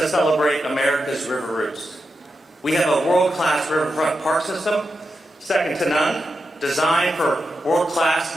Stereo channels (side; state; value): both; normal; correlation 0.88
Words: celebrate America's river roots. We have a world-class riverfront park system, second to none, designed for world-class